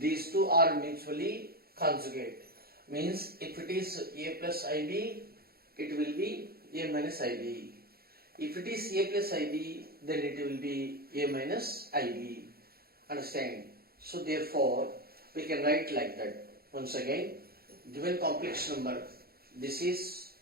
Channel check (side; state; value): left; late; 0.44 ms